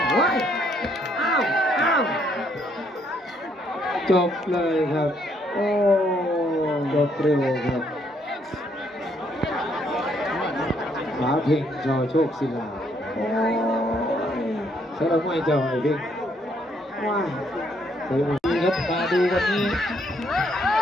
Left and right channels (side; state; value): both; normal; correlation 0.70